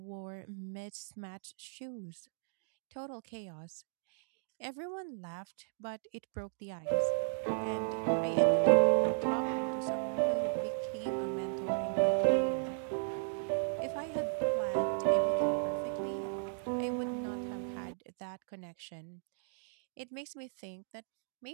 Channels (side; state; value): left; silent; digital silence